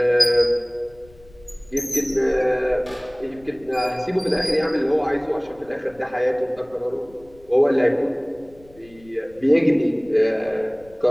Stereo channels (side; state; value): left; noise; rumble, 26 dB below the sound